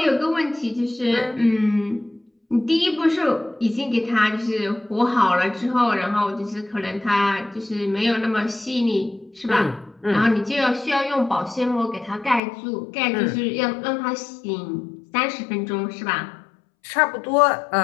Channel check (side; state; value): right; drops out; at 12.4 s